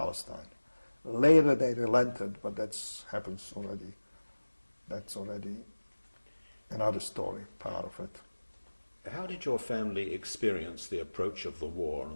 Later they relented, but that's already another story, part of it. How did your family experience the approach of the war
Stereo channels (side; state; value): both; inverted; correlation -1.00